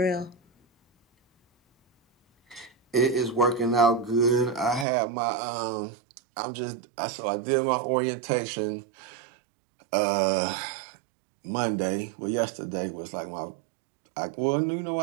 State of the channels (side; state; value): left; drops out; at 4.9 s